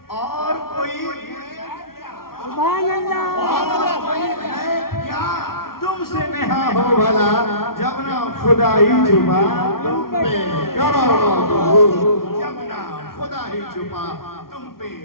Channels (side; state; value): right; late; 0.93 ms